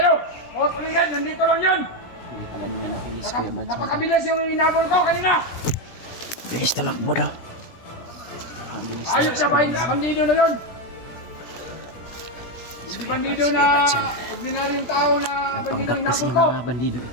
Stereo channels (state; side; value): late; right; 17 ms